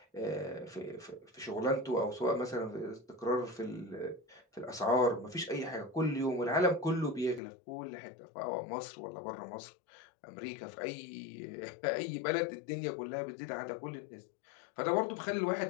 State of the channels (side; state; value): right; drops out; at 7.4 s